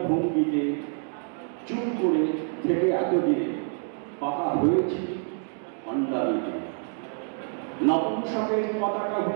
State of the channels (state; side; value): silent; left; 55 dB below the other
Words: ভঙ্গিতে, চুপ করে থেকে এতদিনে পাকা হয়েছি ভণ্ডামিতে। নপুংসকের পতাকা